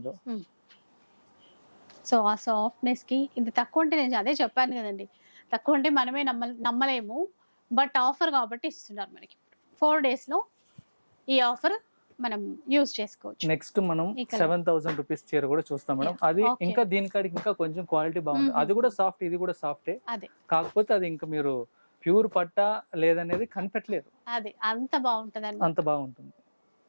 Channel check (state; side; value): inverted; both; correlation -1.00